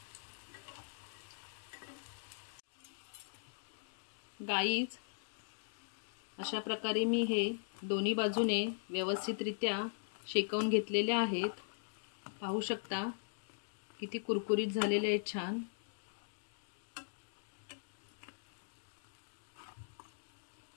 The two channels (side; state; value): right; silent; digital silence